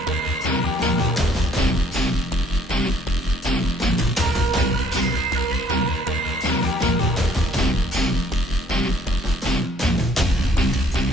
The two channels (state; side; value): normal; both; correlation 0.62